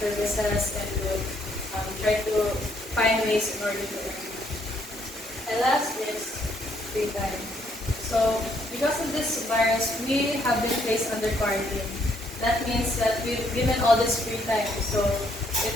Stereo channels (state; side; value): normal; both; correlation 0.70